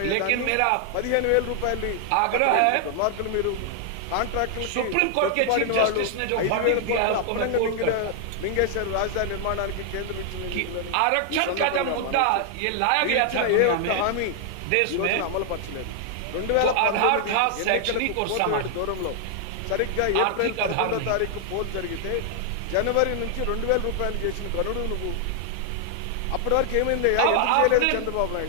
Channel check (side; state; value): both; different; correlation 0.00